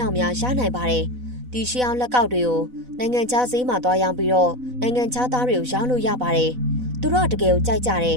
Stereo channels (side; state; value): left; late; 4.0 ms